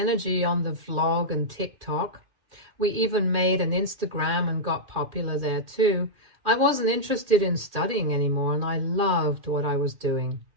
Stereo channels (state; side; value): late; left; 2.1 ms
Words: on the vlog and TikTok. We even made an Instagram and got popular there too. I wasn't interested in studying anymore, and I loved what I was doing.